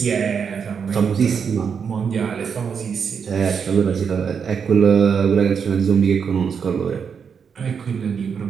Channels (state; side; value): quieter; left; 6.6 dB